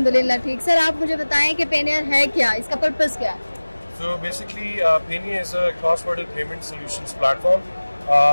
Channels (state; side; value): inverted; both; correlation -1.00